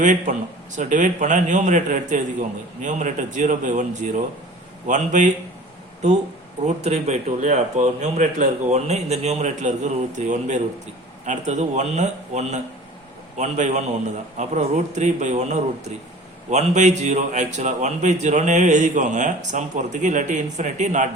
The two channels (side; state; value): both; normal; correlation 0.43